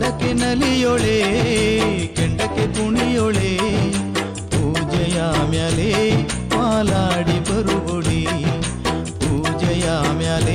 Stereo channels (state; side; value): identical; both; correlation 1.00